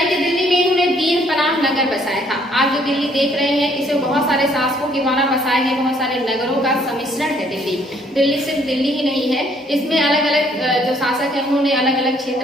कि दिल्ली में इन्होंने दीन पनाह नगर बसाया था। आप जो दिल्ली देख रहे हैं इसे बहुत सारे शासकों के द्वारा बसाए हैं, बहुत सारे नगरों का सम्मिश्रण है दिल्ली। दिल्ली सिर्फ दिल्ली ही नहीं है, इसमें अलग अलग जो शासक है उन्होंने अलग अलग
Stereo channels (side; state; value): both; normal; correlation 0.64